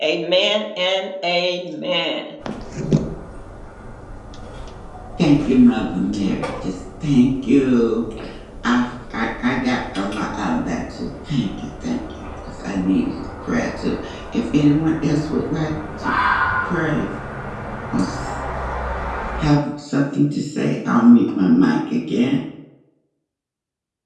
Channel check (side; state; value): both; identical; correlation 1.00